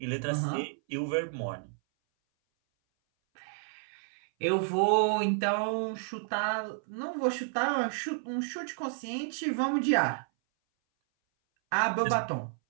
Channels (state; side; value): silent; left; 57 dB below the other